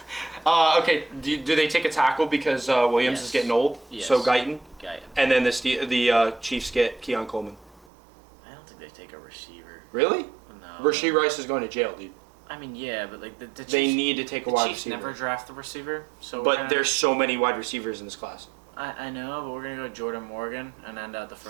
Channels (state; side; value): drops out; left; at 7.9 s